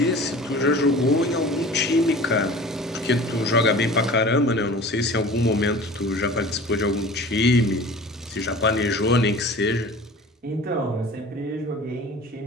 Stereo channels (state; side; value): normal; both; correlation 0.41